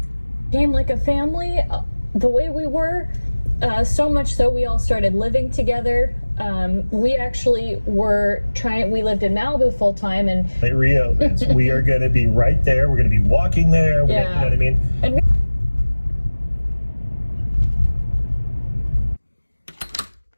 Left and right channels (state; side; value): inverted; both; correlation -1.00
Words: Came like a family, the way we were, so much so we all started living together. We actually we lived in Malibu full time, and Hey, Rio, we are going to be right there. We're going to be walking there. You know what I mean? And